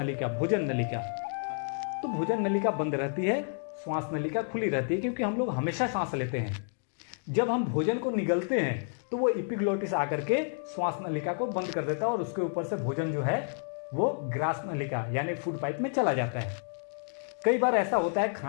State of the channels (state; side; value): silent; right; 58 dB below the other